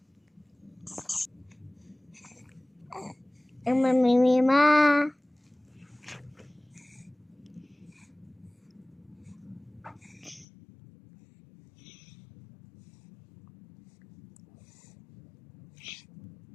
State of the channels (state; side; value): drops out; right; at 10.5 s